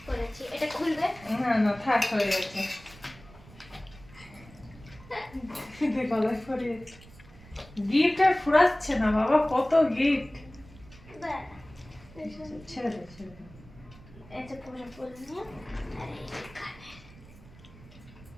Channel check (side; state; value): right; noise; rumble, 21 dB below the sound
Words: করেছি। এটা খুলবে। না না, থাক, হয়ে গেছে। গলায় পরিয়েছে। গিফট আর ফুরাচ্ছে না বাবা, কত গিফট। ব্যাস। ছেড়ে দে, ছেড়ে দে। এটা পুরো ফুল নিয়ে আর এই যে কানে।